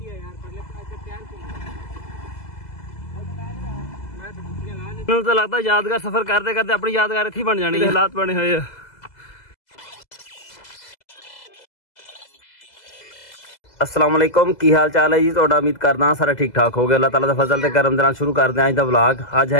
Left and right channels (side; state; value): right; late; 2.0 ms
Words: मैनूं तो लगदा यादगार सफर करते करते अपनी यादगार इत्थे बन जानी है। हालात बने हुए आ। अस्सलाम वालेकुम, की हाल चाल है जी तुहाडा? उम्मीद करदा सारा ठीक ठाक हो गया। अल्लाह ताला दा फजल ते करम दे नाल शुरू करदे अज दा व्लॉग। अज